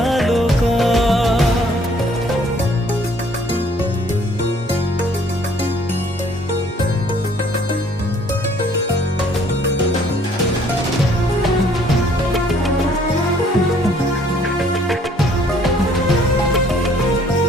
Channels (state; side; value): normal; both; correlation 0.60